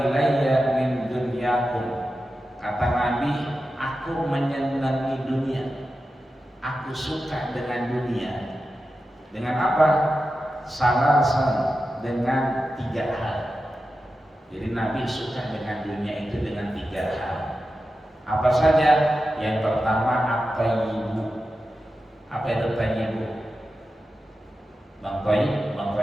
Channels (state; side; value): normal; both; correlation 0.91